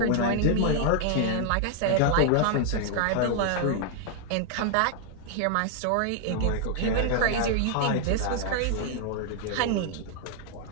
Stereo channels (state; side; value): different; both; correlation 0.00